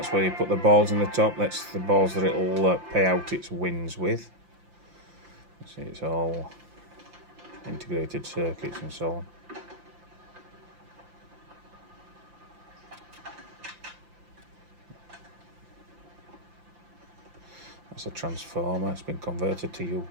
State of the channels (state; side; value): late; left; 5.8 ms